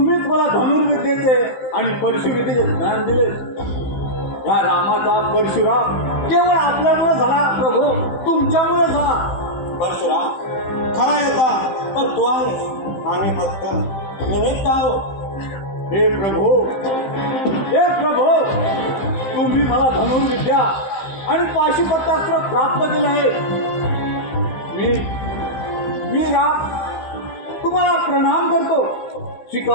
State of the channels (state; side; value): late; right; 15 ms